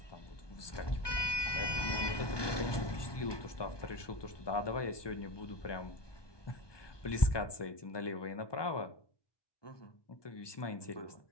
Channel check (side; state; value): right; late; 1.2 ms